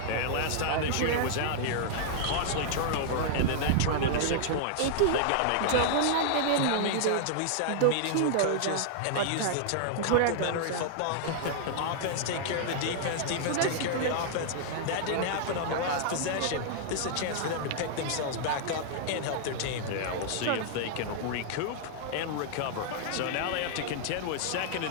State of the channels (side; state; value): both; different; correlation -0.01